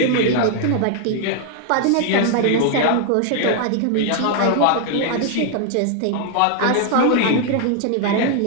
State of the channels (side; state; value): both; different; correlation 0.00